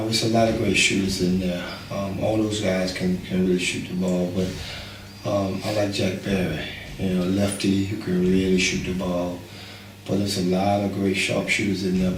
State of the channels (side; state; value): both; identical; correlation 1.00